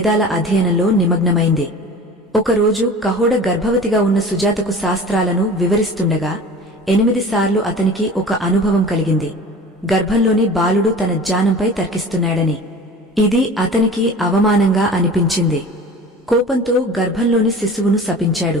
అధ్యయనంలో నిమగ్నమైంది. ఒకరోజు కహోడ గర్భవతిగా ఉన్న సుజాతకు శాస్త్రాలను వివరిస్తుండగా 8 సార్లు అతనికి ఒక అనుభవం కలిగింది, గర్భంలోని బాలుడు తన జ్ఞానంపై తర్కిస్తున్నాడని. ఇది అతనికి అవమానంగా అనిపించింది. కోపంతో గర్భంలోని శిశువును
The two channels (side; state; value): both; normal; correlation 0.39